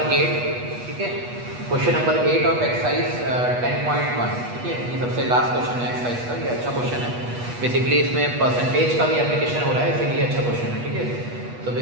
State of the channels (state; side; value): late; left; 8.3 ms